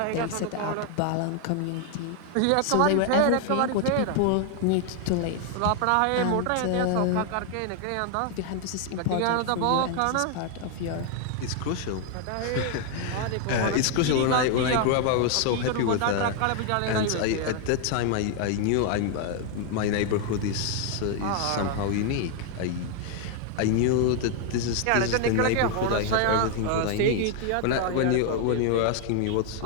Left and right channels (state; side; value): different; both; correlation 0.00